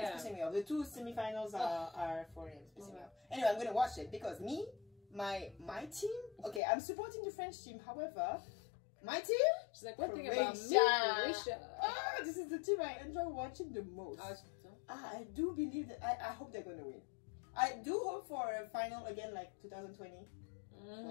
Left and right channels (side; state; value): right; drops out; at 6.6 s